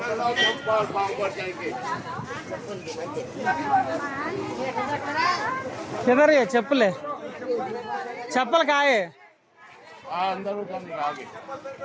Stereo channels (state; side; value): identical; both; correlation 1.00